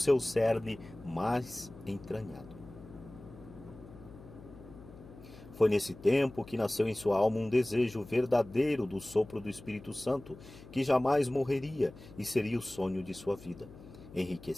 cerne mais entranhado. Foi nesse tempo que nasceu em sua alma um desejo verdadeiro do sopro do Espírito Santo, que jamais morreria e seria o sonho de sua vida,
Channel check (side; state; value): left; noise; hum, 18 dB below the sound